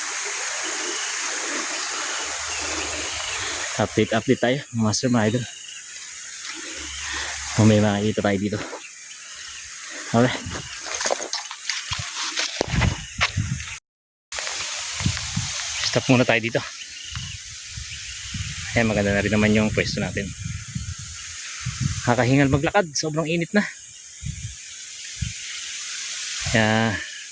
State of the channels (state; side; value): identical; both; correlation 1.00